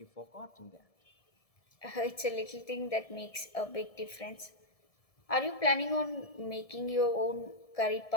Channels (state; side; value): late; right; 1.7 ms